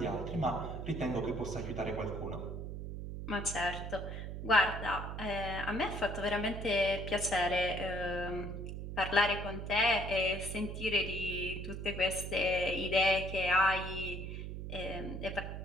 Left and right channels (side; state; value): right; noise; hum, 6 dB below the sound